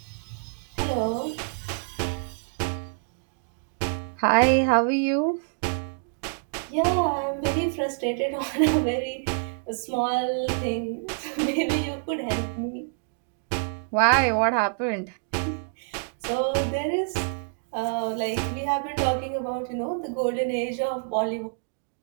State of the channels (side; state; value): left; silent; digital silence